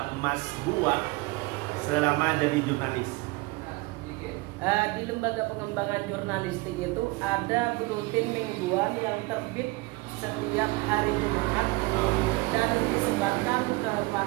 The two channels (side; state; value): left; quieter; 23.7 dB